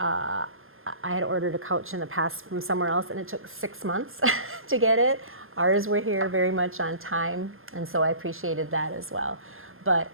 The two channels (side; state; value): left; late; 0.60 ms